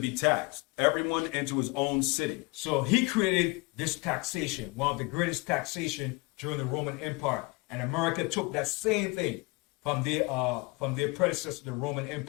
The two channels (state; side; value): quieter; right; 25.9 dB